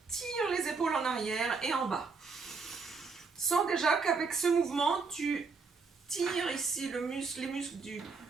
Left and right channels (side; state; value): left; quieter; 4.7 dB